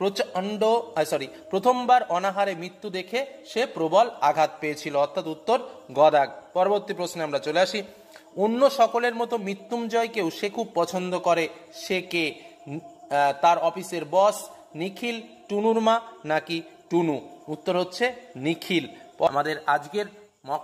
প্রথমবার অনাহারে মৃত্যু দেখে সে প্রবল আঘাত পেয়েছিল, অর্থাৎ উত্তর গদাগ। পরবর্তী প্রশ্নে আমরা চলে আসি, অন্য সকলের মতো মৃত্যুঞ্জয়কেও সে খুব পছন্দ করে, সে কে? তার অফিসের বস, নিখিল, টুনুর মা নাকি টুনু? উত্তর হচ্ছে নিখিল। আমাদের আজকের মক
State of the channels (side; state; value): both; identical; correlation 1.00